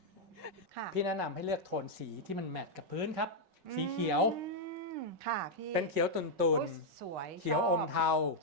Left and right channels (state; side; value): late; left; 5.3 ms